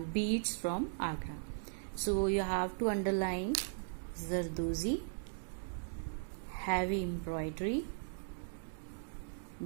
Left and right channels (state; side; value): silent; left; digital silence